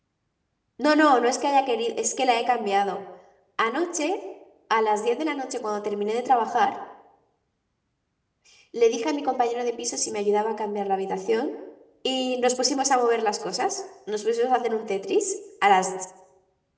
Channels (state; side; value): identical; both; correlation 1.00